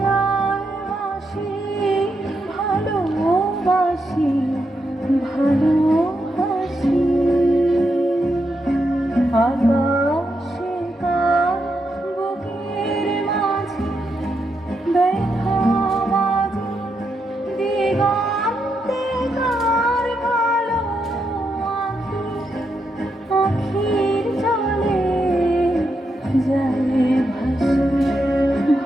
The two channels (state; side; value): normal; both; correlation 0.82